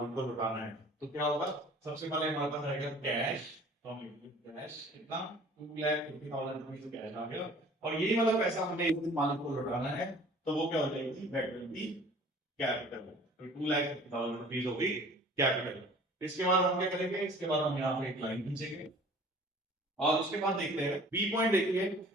को लौटाना है। तो क्या होगा? सबसे पहले हमारे पास आएगा कैश। तो हम कैश कितना? 2,50,000 रुपीज कैश आ गया और यही वाला पैसा हमें एक दिन मालिक को लौटाना है। तो वो क्या हो जाएगी? That will be capital. तो 2,50,000 रुपीज हो गई कैपिटल। इसके बाद हम क्या करेंगे? इसके बाद हम यहाँ पे एक लाइन खींचेंगे और उसके बाद देखते हैं बी पॉइंट। देखिए,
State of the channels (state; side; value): normal; both; correlation 0.49